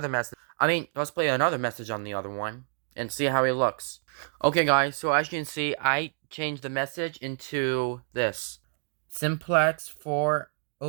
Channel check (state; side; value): silent; left; digital silence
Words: message. Let's play another message on the other one and see how it looks. Okay, guys. So as you can see, I changed the message into this simplex